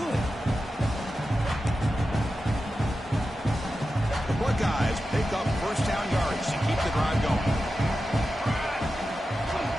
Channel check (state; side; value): normal; both; correlation 0.92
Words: The Buckeyes pick up first down yards to keep the drive going.